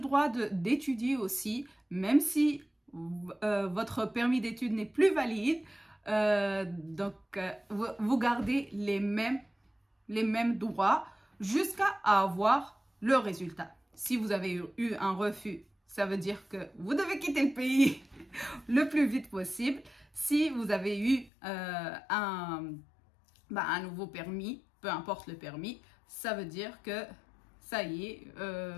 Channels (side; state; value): right; drops out; at 21.3 s